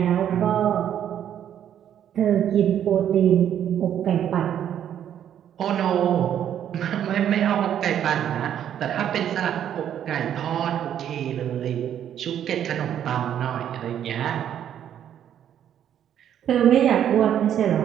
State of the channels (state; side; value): quieter; left; 10.0 dB